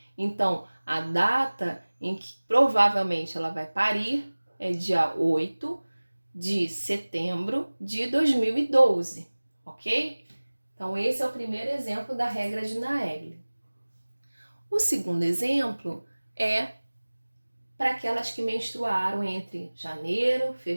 Então a data em que provavelmente ela vai parir é dia 8 de setembro de 2012, ok? Então, esse é o primeiro exemplo da regra de Naegeli. O segundo exemplo é para aquelas que menstruaram entre janeiro,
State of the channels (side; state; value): both; inverted; correlation -1.00